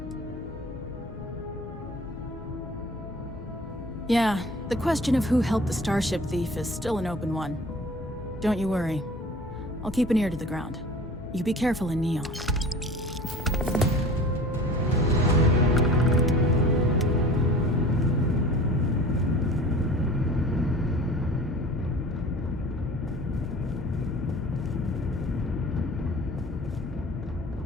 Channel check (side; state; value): both; normal; correlation 0.43